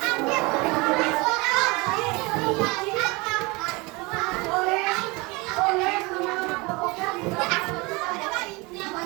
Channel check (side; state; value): left; quieter; 25.5 dB